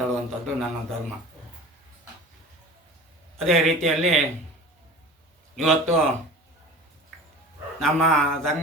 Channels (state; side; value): normal; both; correlation 0.38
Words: ನನ್ನ ಧರ್ಮ. ಅದೇ ರೀತಿಯಲ್ಲಿ ಇವತ್ತು ನಮ್ಮ